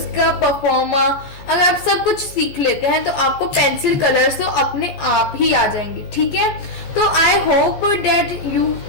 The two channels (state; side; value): late; right; 15 ms